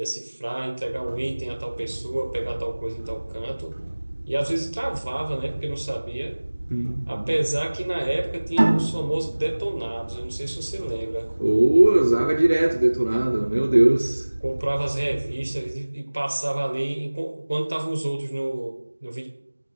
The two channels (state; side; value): inverted; both; correlation -1.00